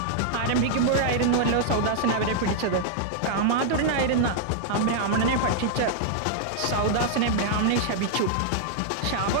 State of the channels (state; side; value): different; both; correlation -0.01